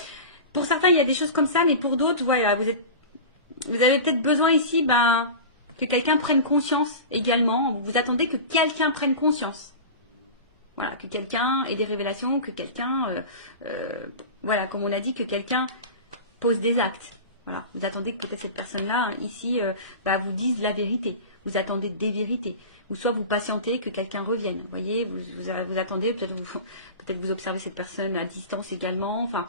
pour certains il y a des choses comme ça, mais pour d'autres, voilà, vous avez peut-être besoin ici, que quelqu'un prenne conscience également, vous attendez que quelqu'un prenne conscience. Voilà, que quelqu'un ait des révélations, que quelqu'un, voilà, comme on a dit, que quelqu'un pose des actes. Voilà, vous attendez que peut-être cette personne-là, ici, vous dise la vérité. Vous attendez des vérités. Ou soit vous patientez que quelqu'un revienne. Vous voyez, vous attendez, peut-être vous observez cette personne à distance également. Enfin,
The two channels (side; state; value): both; inverted; correlation -0.31